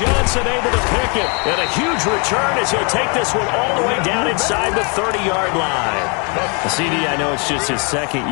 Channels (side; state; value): right; quieter; 34.6 dB